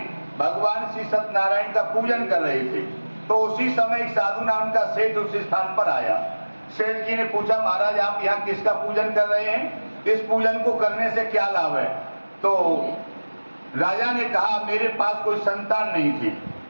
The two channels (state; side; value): inverted; both; correlation -1.00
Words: भगवान श्री सत्यनारायण का पूजन कर रहे थे। तो उसी समय एक साधु नाम का सेठ उस स्थान पर आया। सेठ जी ने पूछा, महाराज आप यहाँ किसका पूजन कर रहे हैं? इस पूजन को करने से क्या लाभ है? तो राजा ने कहा, मेरे पास कोई संतान नहीं थी।